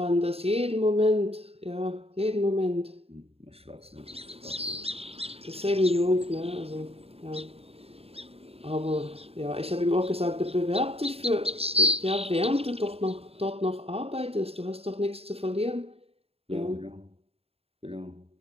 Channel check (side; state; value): left; late; 0.29 ms